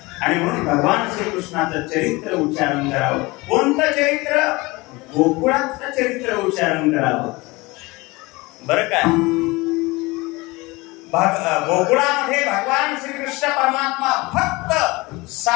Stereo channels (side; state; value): right; quieter; 23.1 dB